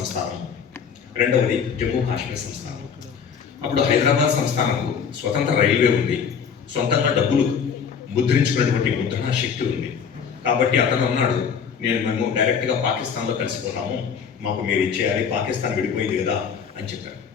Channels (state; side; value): quieter; right; 6.9 dB